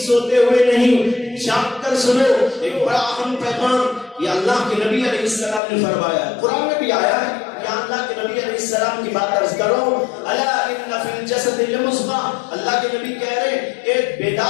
ہوئے نہیں، جاگ کر سنو. ایک بڑا اہم پیغام یہ اللہ کے نبی علیہ السلام نے فرمایا. قرآن میں بھی آیا ہے، یہاں اللہ کے نبی علیہ السلام کی بات عرض کرو. الا ان فی الجسد لمضغۃ، اللہ کے نبی کہہ رہے ہیں کہ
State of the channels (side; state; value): right; drops out; at 5.6 s